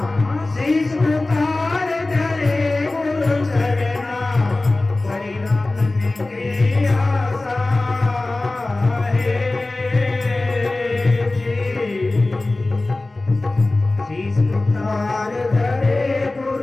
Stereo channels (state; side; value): quieter; right; 3.0 dB